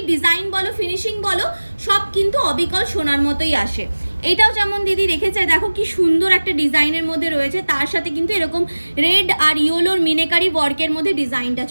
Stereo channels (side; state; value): both; inverted; correlation -1.00